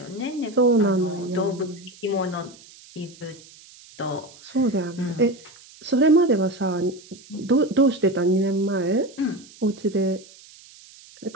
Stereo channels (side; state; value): right; noise; hiss, 23 dB below the sound